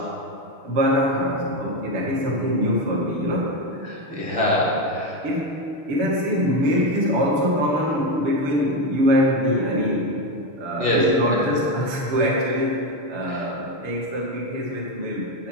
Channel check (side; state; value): left; late; 7.0 ms